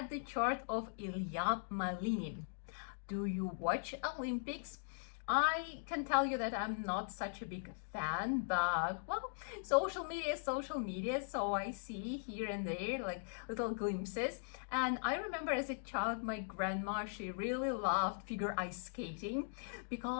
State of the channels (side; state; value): right; silent; digital silence